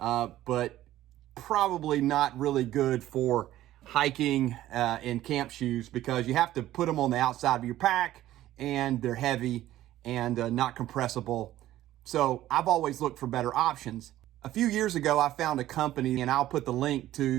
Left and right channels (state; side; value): quieter; left; 14.2 dB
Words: probably not really good for hiking and camp shoes because you have to put them on the outside of your pack and they're heavy and not compressible. So I've always looked for better options. A few years ago, I found a company, and I'll put the link to